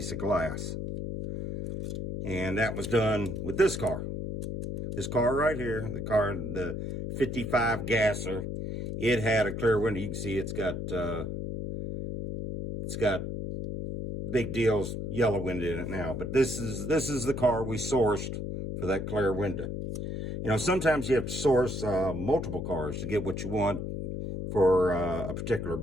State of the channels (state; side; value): noise; left; hum, 4 dB below the sound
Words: of glass. And that was done with this car. This car right here, the 55 gasser, it had a clear window. You can see it's got Big Deal's yellow window in it now. But this is the car we sourced for that clear window. You know, sometimes you have to source multiple cars to get what you want for a particular